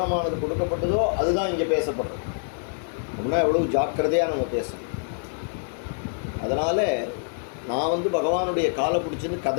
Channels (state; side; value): silent; right; digital silence